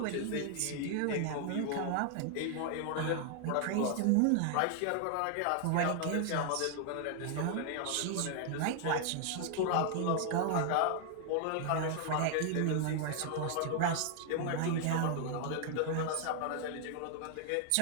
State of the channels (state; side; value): different; both; correlation 0.00